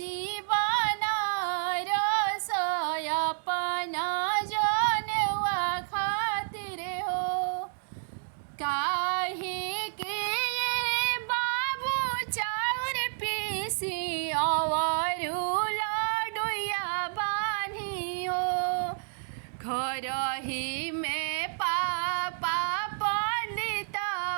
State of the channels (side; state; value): left; silent; digital silence